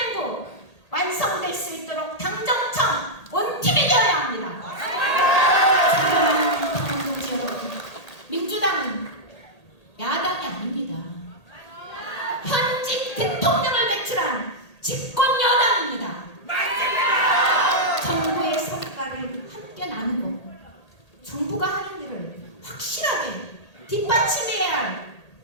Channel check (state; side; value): late; right; 1.8 ms